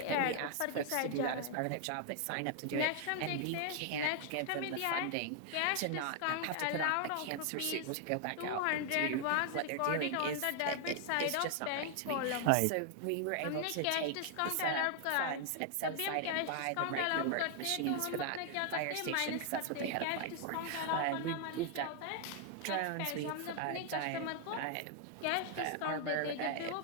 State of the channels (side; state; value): both; different; correlation 0.00